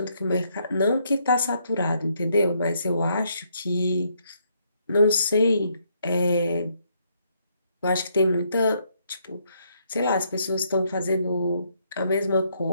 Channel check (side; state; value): both; inverted; correlation -0.73